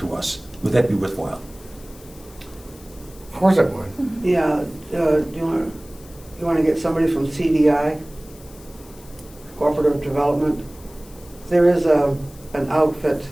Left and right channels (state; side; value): noise; left; hiss, 23 dB below the sound